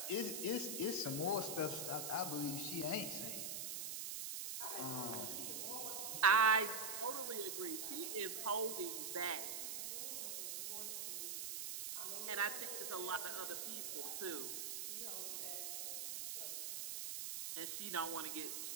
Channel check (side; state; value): right; noise; hiss, 3 dB below the sound